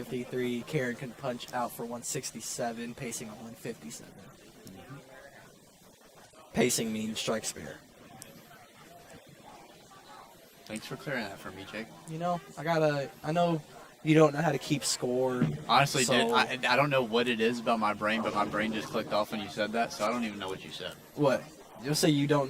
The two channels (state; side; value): identical; both; correlation 1.00